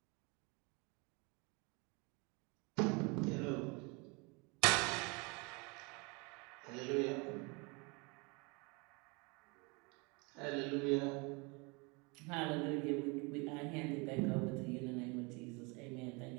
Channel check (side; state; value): left; quieter; 29.5 dB